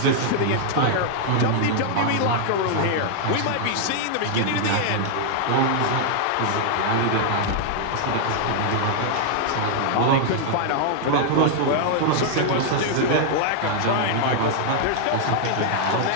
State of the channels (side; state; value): both; different; correlation 0.00